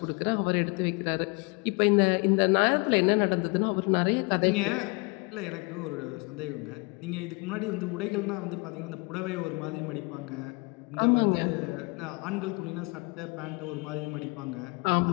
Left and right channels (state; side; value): quieter; right; 29.7 dB